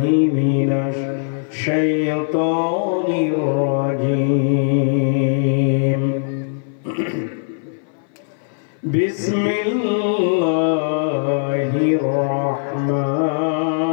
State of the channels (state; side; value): silent; right; 61 dB below the other